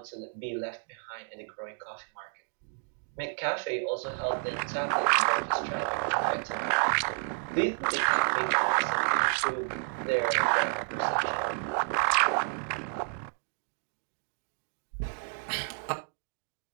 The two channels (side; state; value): left; silent; digital silence